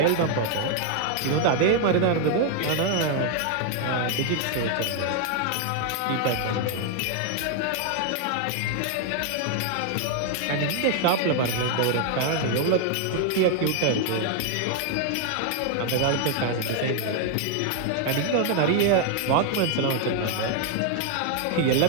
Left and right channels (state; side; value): different; both; correlation 0.00